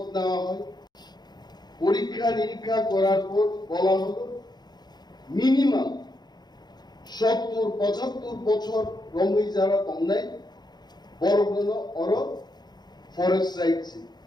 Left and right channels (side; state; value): right; late; 0.20 ms